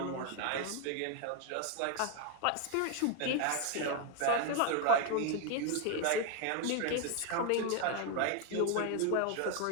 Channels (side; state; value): both; different; correlation 0.01